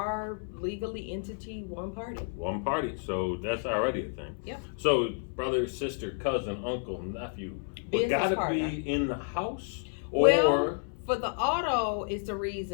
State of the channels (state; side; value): silent; right; 57 dB below the other